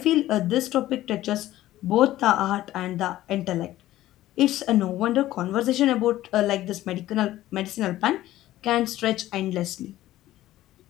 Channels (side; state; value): right; quieter; 14.8 dB